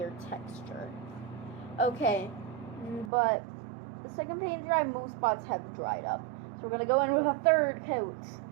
texture. Okay. But the second paint dry, most spots have dried up. So we're going to go in with a third coat.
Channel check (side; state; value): left; drops out; at 3.1 s